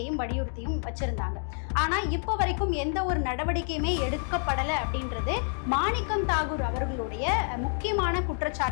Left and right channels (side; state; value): right; silent; 59 dB below the other